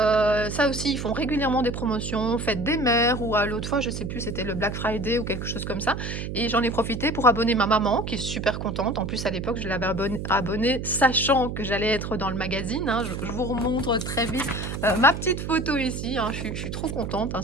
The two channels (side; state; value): right; noise; hum, 5 dB below the sound